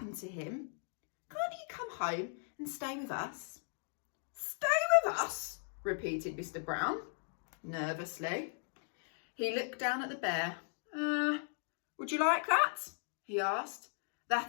to him. Can't he come home and stay with us? Stay with us? Repeated Mr Brown, nervously. He looked down at the bear. Would you like that? He asked.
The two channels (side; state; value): right; silent; 53 dB below the other